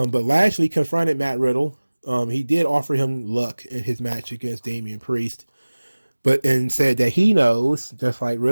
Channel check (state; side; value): inverted; both; correlation -1.00